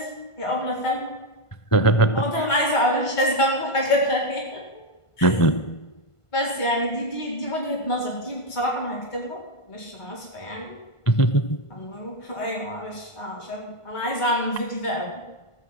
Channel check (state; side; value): late; right; 1.5 ms